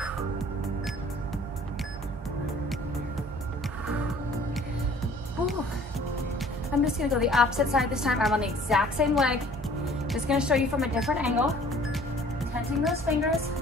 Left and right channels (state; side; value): normal; both; correlation 0.53